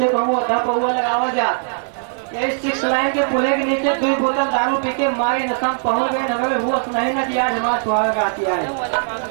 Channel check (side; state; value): left; silent; digital silence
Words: कहूँ अधा पौआ लगावा जा। यही 6 लाइन के पुले के नीचे 2 बोतल दारू पी के मारे नशम पहुंच गए। नगर होश नहीं न दिया हमारा सुहाग रात आए।